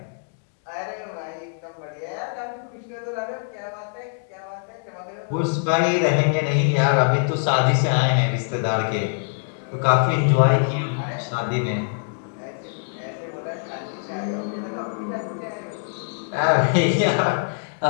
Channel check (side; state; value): right; silent; digital silence